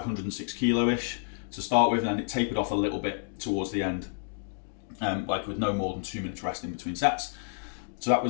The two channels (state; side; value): silent; right; digital silence